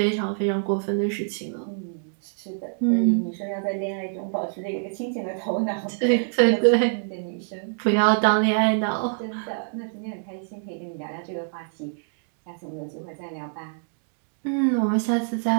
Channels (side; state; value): left; silent; digital silence